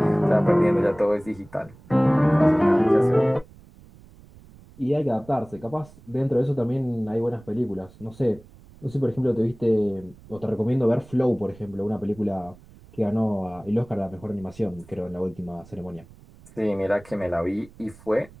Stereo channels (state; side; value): noise; right; rumble, 23 dB below the sound